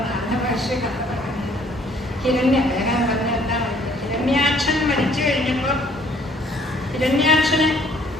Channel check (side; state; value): both; normal; correlation 0.60